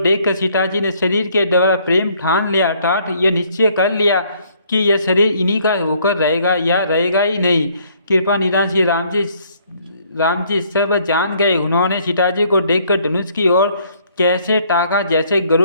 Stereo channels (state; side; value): inverted; both; correlation -0.64